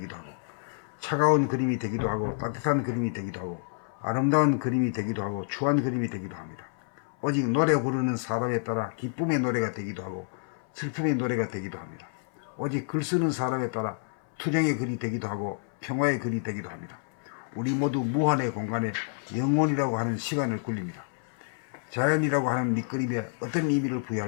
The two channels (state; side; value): silent; right; 59 dB below the other